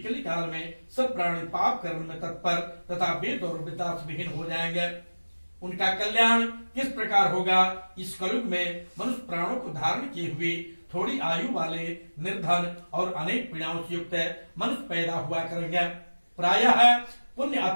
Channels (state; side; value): inverted; both; correlation -1.00